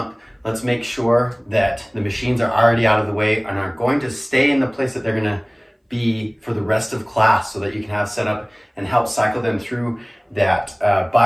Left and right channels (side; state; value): both; identical; correlation 1.00